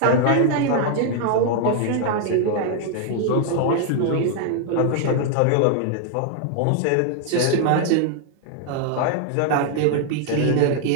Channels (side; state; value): both; different; correlation 0.00